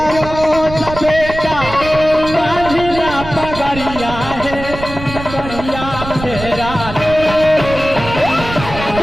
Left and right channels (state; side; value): noise; right; rumble, 10 dB below the sound